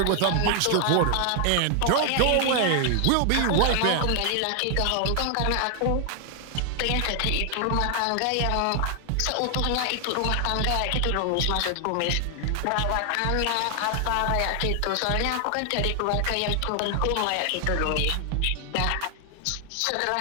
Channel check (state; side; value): different; both; correlation 0.00